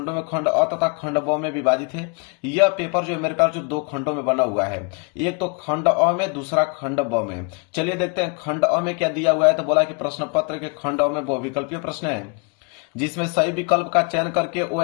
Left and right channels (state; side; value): quieter; right; 34.5 dB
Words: में खंड अ तथा खंड ब में विभाजित है। यह पेपर जो है मेरे प्यारों 2 खंडों में बना हुआ है। एक तो खंड अ में दूसरा खंड ब में। चलिए देखते हैं खंड अ में क्या दिया हुआ है। तो बोला कि प्रश्न पत्र के खंड अ में बहुविकल्पीय प्रश्न है जिसमें सही विकल्प का चयन करके